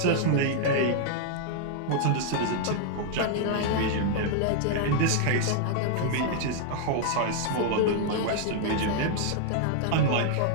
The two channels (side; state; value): both; different; correlation 0.00